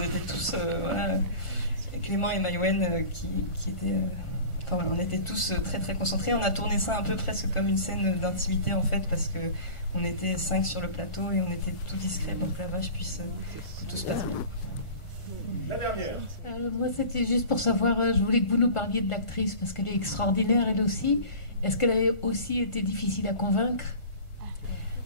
tous, voilà, Clément et Maïwen qui étaient, voilà, on était tous très très concentrés. On a tourné ça un peu presque comme une scène d'intimité en fait, parce que on était 5 sur le plateau et on était tout discret pour que la vache puisse, que tout se passe bien. La dernière. Moi c'était juste pour savoir, je voulais que vous nous parliez de l'actrice parce qu'elle est extraordinaire elle aussi. Est-ce qu'elle a aussi été difficile à convaincre?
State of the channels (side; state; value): right; late; 1.4 ms